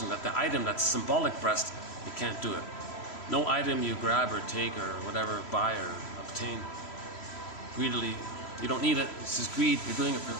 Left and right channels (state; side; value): late; right; 3.0 ms